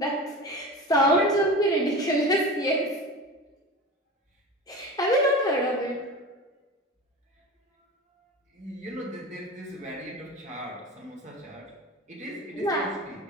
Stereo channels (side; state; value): both; normal; correlation 0.31